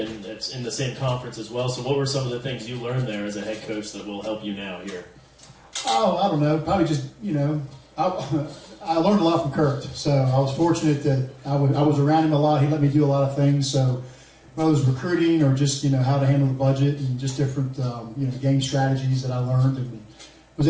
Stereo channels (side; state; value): both; identical; correlation 1.00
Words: it's in the same conference as well. So what were some of the things you learned there as a head coach that will help you now here? Oh, I don't know. Probably just, I learned a lot from Kurt. So I was fortunate that I was around him a lot. He let me do a lot of things. So whether it was recruiting or just, how to handle the budget and just different, game strategies that I learned and was